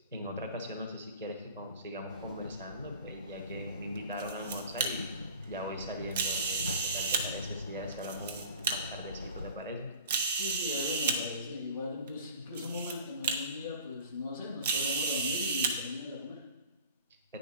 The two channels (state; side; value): inverted; both; correlation -0.43